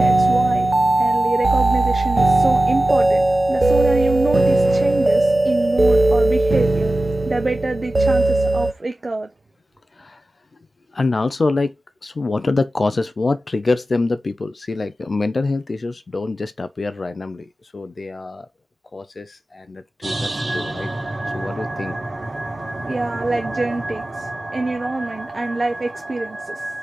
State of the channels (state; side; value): normal; both; correlation 0.95